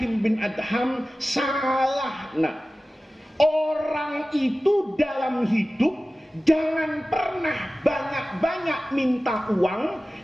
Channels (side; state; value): both; normal; correlation 0.96